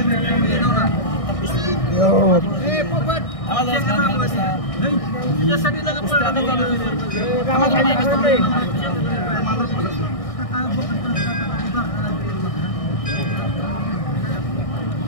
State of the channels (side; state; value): right; late; 1.6 ms